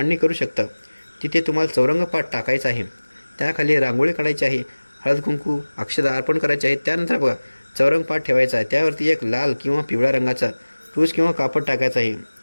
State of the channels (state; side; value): inverted; both; correlation -1.00